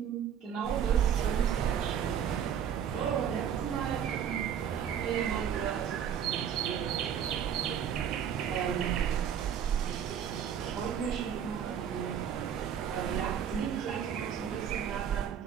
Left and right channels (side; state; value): left; quieter; 8.7 dB